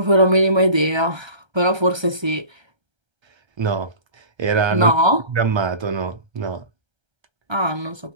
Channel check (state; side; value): late; left; 1.3 ms